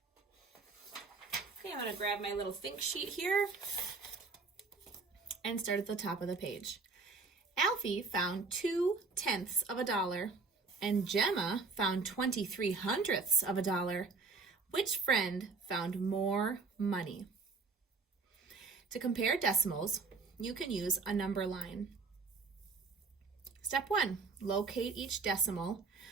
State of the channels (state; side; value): quieter; left; 4.3 dB